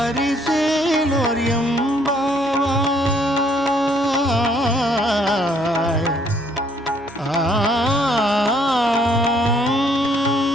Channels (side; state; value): both; normal; correlation 0.65